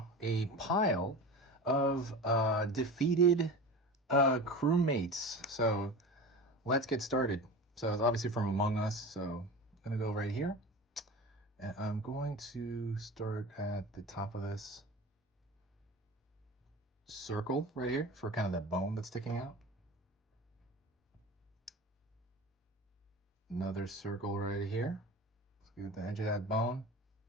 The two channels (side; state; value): both; normal; correlation 0.32